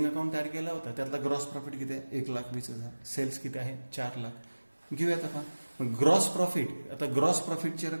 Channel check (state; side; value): inverted; both; correlation -1.00